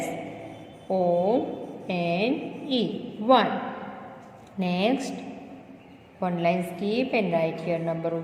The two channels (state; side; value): identical; both; correlation 1.00